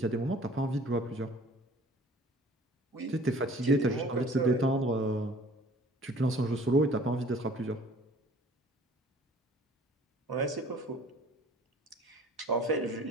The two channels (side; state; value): both; normal; correlation 0.50